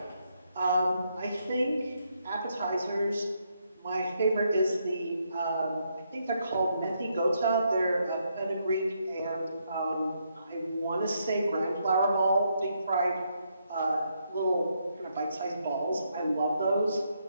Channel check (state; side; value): inverted; both; correlation -0.77